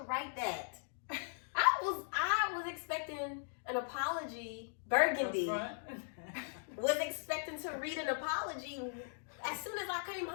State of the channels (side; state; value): right; silent; digital silence